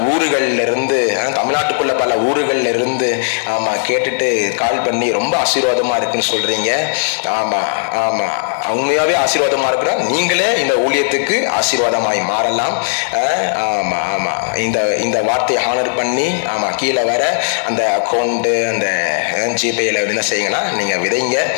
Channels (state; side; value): silent; right; digital silence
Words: ஊர்கள்ல இருந்து, தமிழ்நாட்டுக்குள்ள பல ஊர்கள்ல இருந்து கேட்டுட்டு கால் பண்ணி ரொம்ப ஆசீர்வாதமா இருக்குன்னு சொல்றீங்க. உண்மையாவே ஆசீர்வாதமா இருக்கிறோம். நீங்களே இந்த ஊழியத்துக்கு ஆசீர்வாதமாய் மாறலாம். இந்த வார்த்தையை ஹானர் பண்ணி கீழே வர அந்த அக்கௌண்ட், அந்த ஜிபேல என்ன செய்யுங்கன்னா நீங்க விதைங்க.